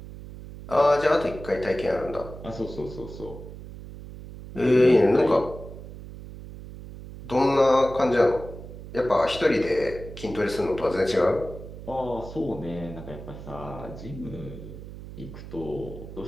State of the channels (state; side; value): noise; right; hum, 13 dB below the sound